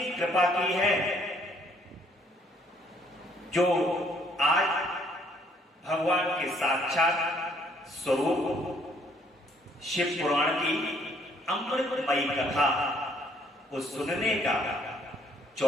कृपा की है, जो आज भगवान के साक्षात स्वरूप शिव पुराण की अमृतमयी कथा को सुनने का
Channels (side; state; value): both; normal; correlation 0.65